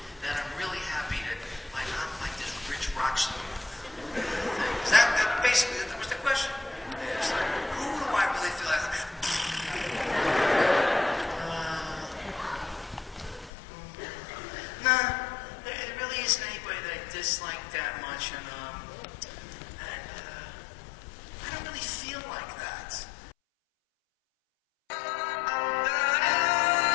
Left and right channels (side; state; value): right; drops out; at 13.5 s